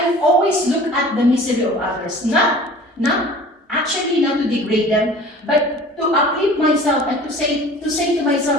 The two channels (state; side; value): normal; both; correlation 0.44